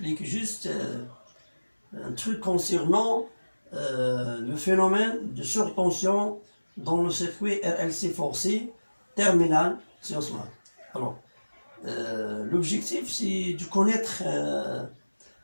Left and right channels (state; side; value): inverted; both; correlation -1.00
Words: juste un truc concernant le phénomène de surtension dans le circuit RLC forcé terminal sciences maths. Alors l'objectif c'est de